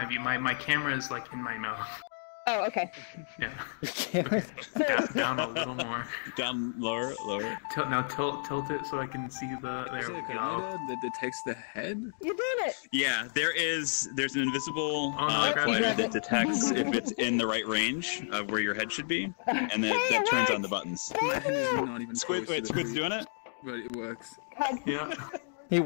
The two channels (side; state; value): right; silent; digital silence